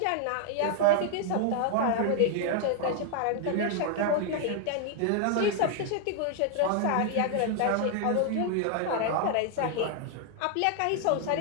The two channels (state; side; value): different; both; correlation 0.00